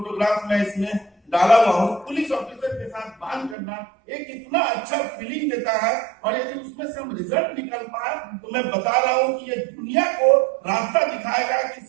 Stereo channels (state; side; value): drops out; left; at 3.6 s